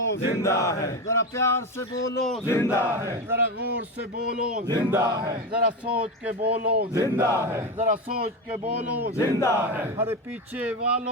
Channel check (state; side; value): normal; both; correlation 0.17